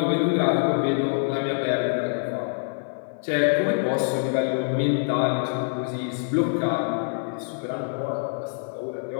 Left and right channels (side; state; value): right; silent; 56 dB below the other